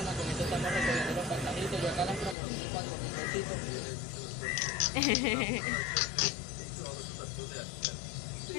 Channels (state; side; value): drops out; right; at 2.4 s